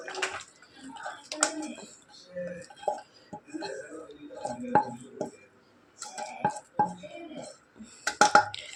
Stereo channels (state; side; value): identical; both; correlation 1.00